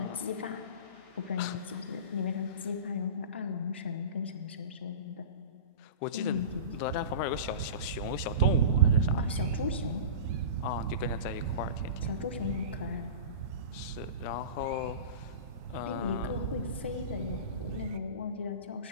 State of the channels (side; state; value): both; inverted; correlation -0.32